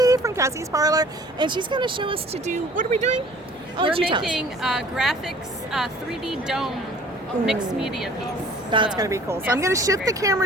from Kassy's Parlour, and she's going to show us to do, what are we doing? We're making graphics 3D dome mixed media piece. That's going to be cool. So I'm going to shift the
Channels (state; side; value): normal; both; correlation 0.50